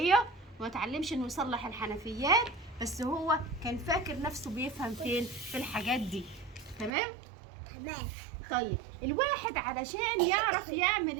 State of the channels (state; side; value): drops out; left; at 6.9 s